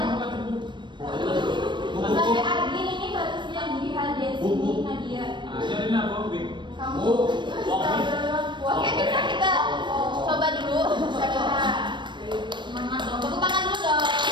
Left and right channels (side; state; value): left; late; 0.22 ms